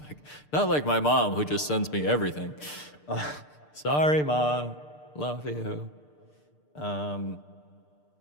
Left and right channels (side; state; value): right; late; 6.7 ms